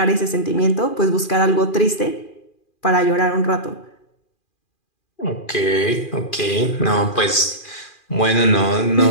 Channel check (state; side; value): late; right; 2.4 ms